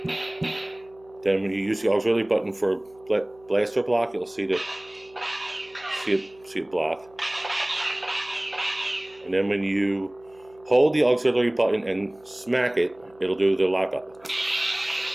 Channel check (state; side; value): noise; right; hum, 29 dB below the sound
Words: Then when you use the auxiliary button for blaster block, you'll see it block. And then when you hold the auxiliary button and smack it, it'll do the lockup.